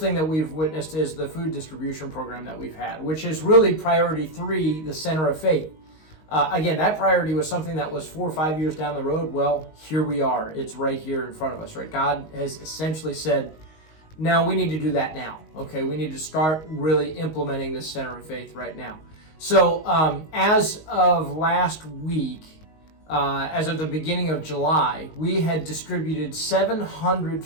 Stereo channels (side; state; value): right; late; 19 ms